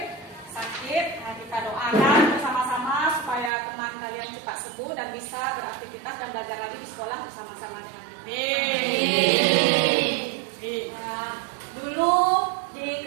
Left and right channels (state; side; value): drops out; left; at 3.5 s